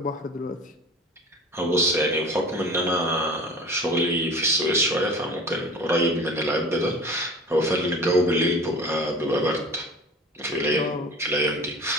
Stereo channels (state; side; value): normal; both; correlation 0.40